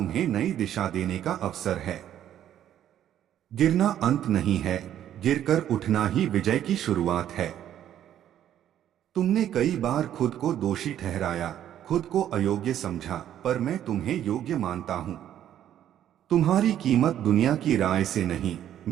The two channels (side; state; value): left; quieter; 10.9 dB